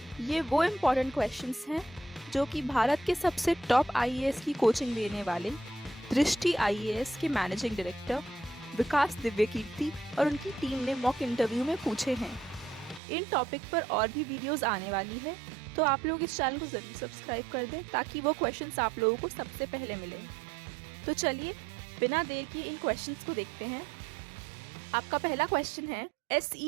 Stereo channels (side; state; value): left; drops out; at 13.0 s